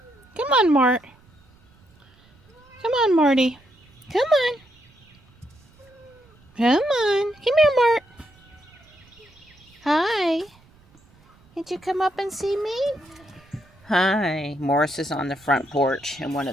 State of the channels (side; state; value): right; noise; rumble, 29 dB below the sound